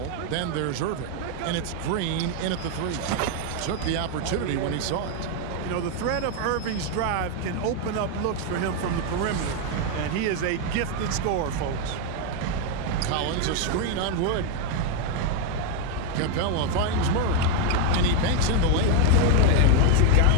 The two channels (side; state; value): both; different; correlation 0.01